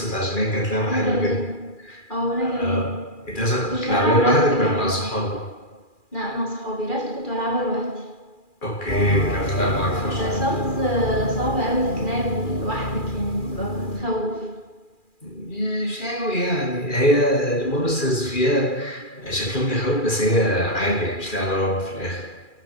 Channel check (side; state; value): right; late; 2.4 ms